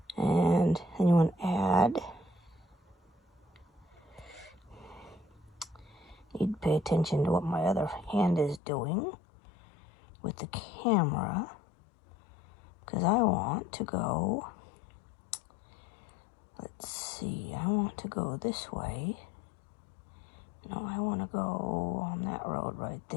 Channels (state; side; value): drops out; right; at 8.6 s